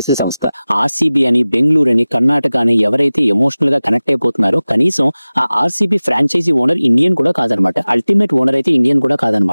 సంస్థ. ఆర్సీబీ అని, బెంగళూరు అని, కర్ణాటక అని ఎవరైతే ఎమోషనల్ గా కనెక్ట్ అయిపోతున్నారో కనీసం ఆ ఆర్సీబీ ఫ్రాంచైజీ ఓనర్ ఇండియన్ కూడా కాదనమాట. అల్టిమేట్ ఓనర్ అయితే ఇండియన్ కూడా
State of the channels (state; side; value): inverted; both; correlation -0.98